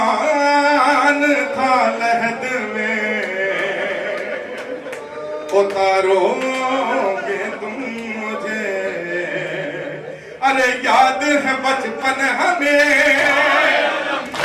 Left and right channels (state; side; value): identical; both; correlation 1.00